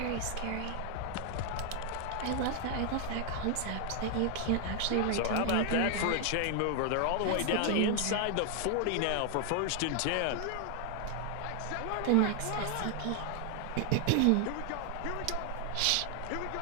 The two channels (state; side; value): different; both; correlation 0.00